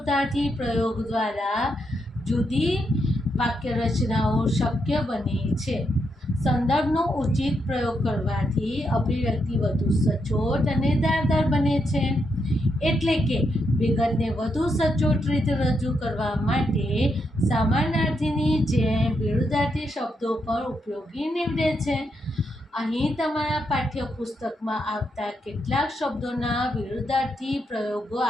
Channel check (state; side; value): normal; both; correlation 0.81